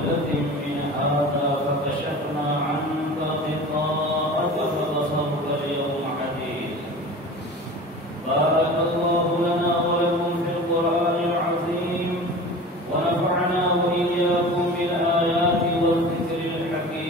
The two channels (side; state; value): both; normal; correlation 0.36